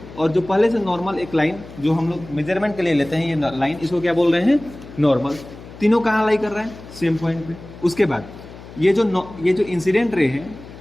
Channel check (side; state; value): left; noise; hum, 17 dB below the sound